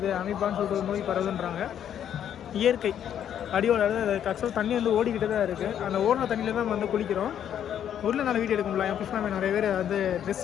அமீபான்னு சொல்லிட்டு ஒரு நோய் பரவுதுன்றாங்க. இயற்கை அடியோட ஆக்சுவலாக தண்ணி வந்து ஓடிக்கிட்டு தான் இருக்குது. அந்த ஓடின தண்ணியில் தான் நம்ம வந்து குளிக்கிறோம். ஊரில் நல்லா வீடியோ எடுக்க முடியல. என் புஷ்ணாமே நிறைய பேர் வந்து ட்ரெஸ்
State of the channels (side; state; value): right; quieter; 9.7 dB